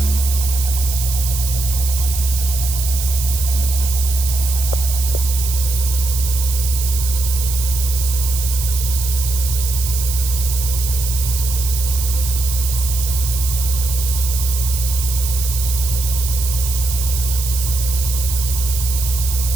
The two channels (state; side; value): noise; right; hiss, 5 dB below the sound